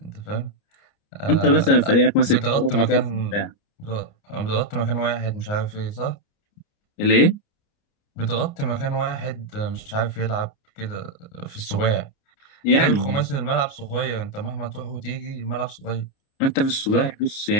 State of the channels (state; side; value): late; right; 29 ms